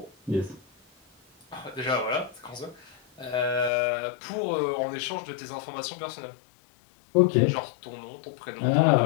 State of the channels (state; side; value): drops out; right; at 3.7 s